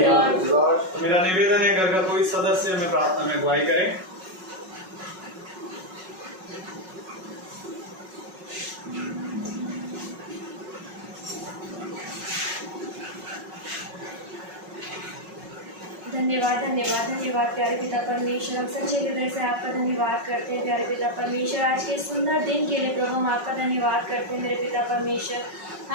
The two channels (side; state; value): left; late; 5.4 ms